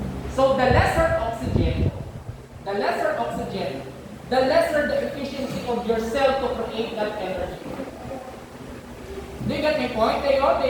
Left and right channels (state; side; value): identical; both; correlation 1.00